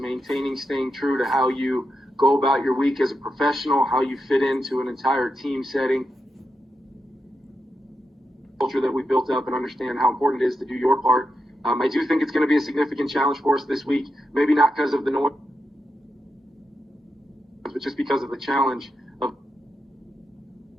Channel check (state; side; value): normal; both; correlation 0.87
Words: true to how you go about your week as a professional, how you fit into an entire team setting, culture that we built up, and understand how important it is to do your part. I do think it's going to be a significant challenge for us this week, maybe not because of the noise, but just because of the challenge of